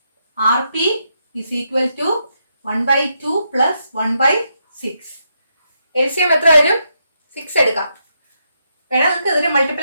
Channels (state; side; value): inverted; both; correlation -0.81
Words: is equal to 1/2 plus 1/6. LCM എത്ര വരും? 6 എടുക്കാം. വേണം നമുക്ക് ഇതിനെ